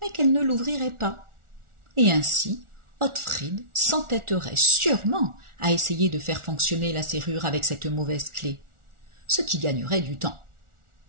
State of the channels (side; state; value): left; late; 1.4 ms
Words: qu'elle ne l'ouvrirait pas. Et ainsi, Ottfried s'entêterait sûrement à essayer de faire fonctionner la serrure avec cette mauvaise clé, ce qui gagnerait du temps.